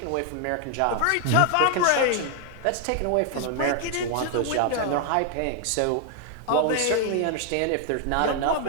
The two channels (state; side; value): different; both; correlation 0.00